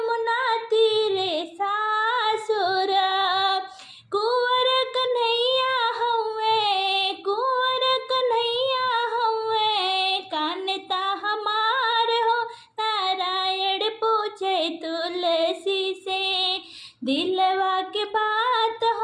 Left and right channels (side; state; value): both; identical; correlation 1.00